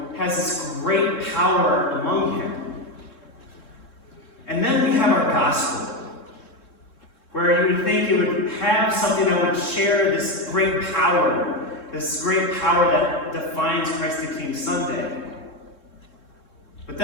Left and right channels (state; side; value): late; right; 3.7 ms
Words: has this great power among him. And then we have our gospel, where you would think it would have something that would share this great power that defines Christ the King Sunday. But